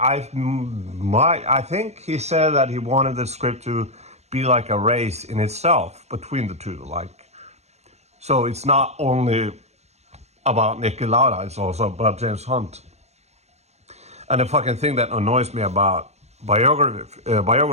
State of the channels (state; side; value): late; left; 0.32 ms